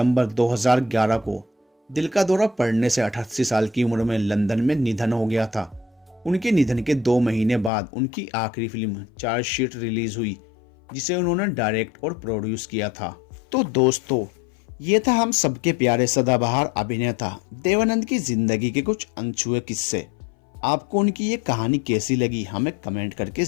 2011 को दिल का दौरा पड़ने से 88 साल की उम्र में लंदन में निधन हो गया था। उनके निधन के 2 महीने बाद उनकी आखिरी फिल्म चार्जशीट रिलीज हुई, जिसे उन्होंने डायरेक्ट और प्रोड्यूस किया था। तो दोस्तों, ये था हम सबके प्यारे सदाबहार अभिनेता देवानंद की जिंदगी के कुछ अनछुए किस्से। आपको उनकी ये कहानी कैसी लगी हमें कमेंट करके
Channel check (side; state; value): right; drops out; at 7.7 s